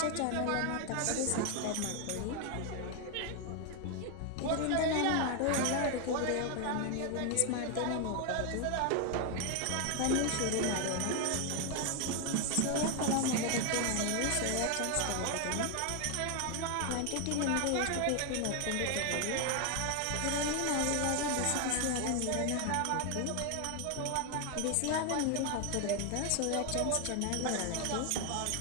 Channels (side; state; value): both; different; correlation 0.01